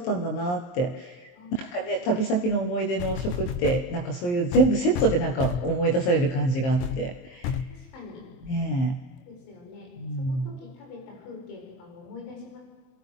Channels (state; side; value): late; right; 24 ms